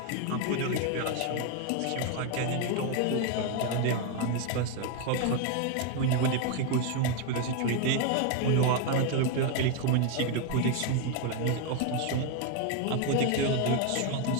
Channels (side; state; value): both; different; correlation 0.01